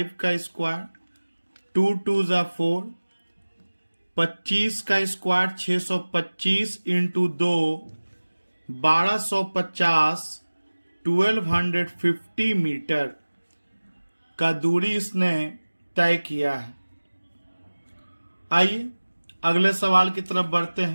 का स्क्वायर, 2 2 ज़ा 4, 25 का स्क्वायर 625 इंटू 2 1250 1250 मीटर का दूरी इसने तय किया है। आइए अगले सवाल की तरफ बढ़ते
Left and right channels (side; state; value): both; inverted; correlation -1.00